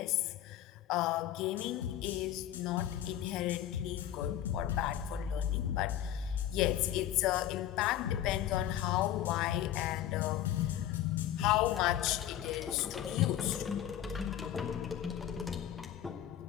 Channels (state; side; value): quieter; right; 11.7 dB